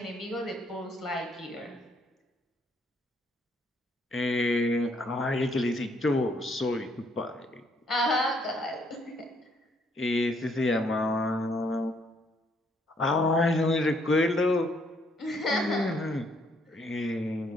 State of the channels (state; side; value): normal; both; correlation 0.69